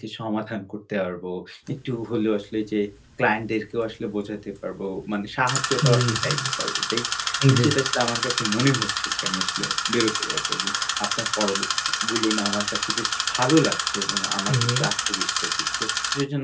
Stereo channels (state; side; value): identical; both; correlation 1.00